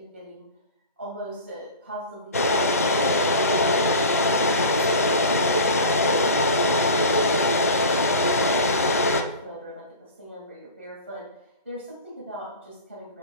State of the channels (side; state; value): both; inverted; correlation -0.33